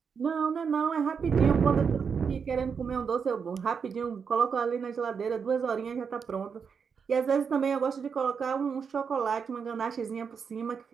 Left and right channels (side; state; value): left; quieter; 6.2 dB